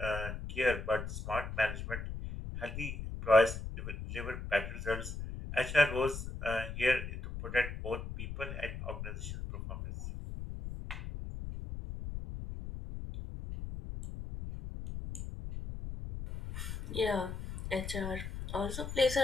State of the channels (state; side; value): noise; left; rumble, 7 dB below the sound